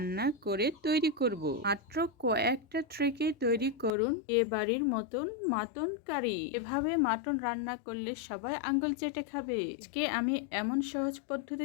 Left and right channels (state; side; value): drops out; right; at 3.9 s